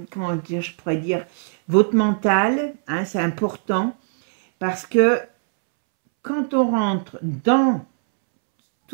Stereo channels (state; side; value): silent; left; 65 dB below the other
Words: comment dire, je pourrais dire, votre mental, hein, c'est important, parce que quand on rentre dans